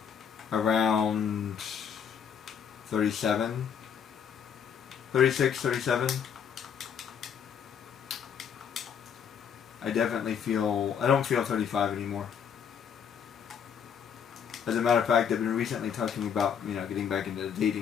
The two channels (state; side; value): quieter; right; 7.6 dB